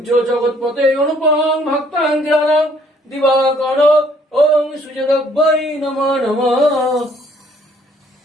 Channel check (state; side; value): normal; both; correlation 0.63